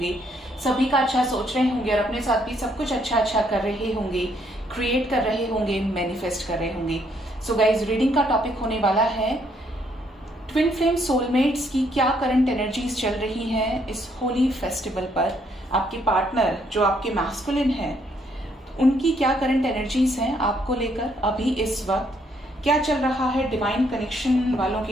सभी का अच्छा सोच रहे होंगे और अपने साथ भी सब कुछ अच्छा कर रहे होंगे, क्रिएट कर रहे होंगे, मैनिफेस्ट कर रहे होंगे। सो गाइज, रीडिंग का टॉपिक होने वाला है ट्विन फ्लेम सोलमेट्स की क्या करंट एनर्जीज चल रही हैं इस होली फेस्टिवल पर। आपके पार्टनर जो आपके मैस्कुलिन है, उनकी क्या करंट एनर्जीज हैं आपको लेकर अभी इस वक्त, क्या चल रहा है डिवाइन कनेक्शन वालों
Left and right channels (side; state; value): both; normal; correlation 0.70